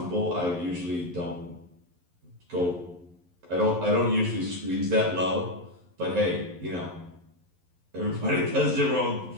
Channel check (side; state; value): left; late; 11 ms